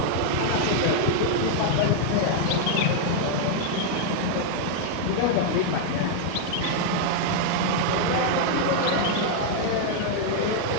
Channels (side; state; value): both; different; correlation -0.01